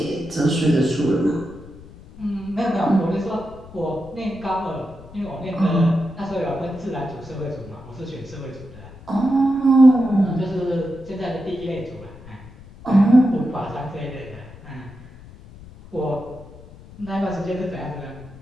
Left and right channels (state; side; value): noise; left; rumble, 19 dB below the sound